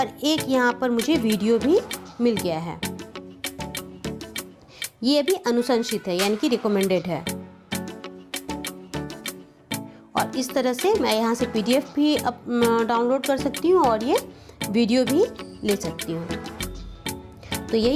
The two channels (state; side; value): identical; both; correlation 1.00